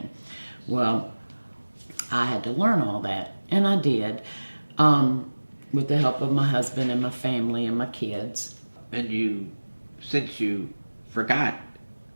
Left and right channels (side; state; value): both; inverted; correlation -1.00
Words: Well, I had to learn all that, and I did, with the help of my husband and my family and my kids. And since you forgot